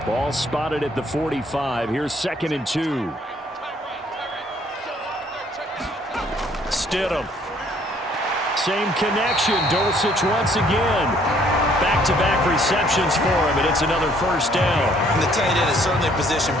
Ball spotted at the 45. Here's 2nd and 2. Stidham. Same connection. Dulcich once again. Back-to-back receptions for him, and it's another first down. And the tight end is certainly a position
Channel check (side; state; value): both; normal; correlation 0.62